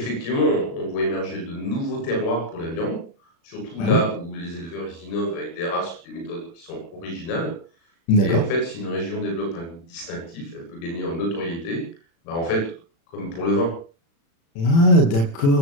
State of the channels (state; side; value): late; right; 36 ms